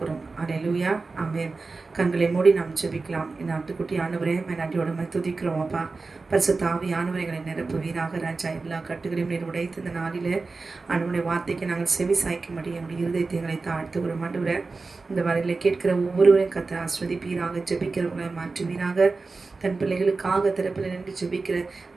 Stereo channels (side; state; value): left; quieter; 3.9 dB